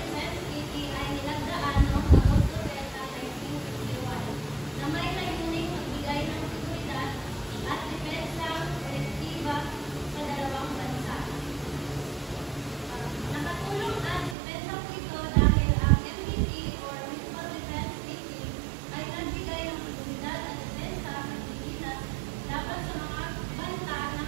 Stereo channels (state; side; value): drops out; left; at 14.4 s